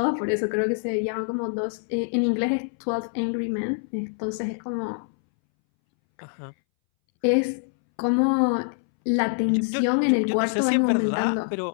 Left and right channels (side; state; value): right; silent; 62 dB below the other